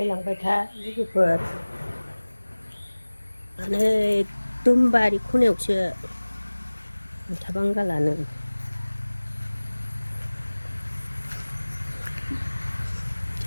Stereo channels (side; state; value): both; inverted; correlation -1.00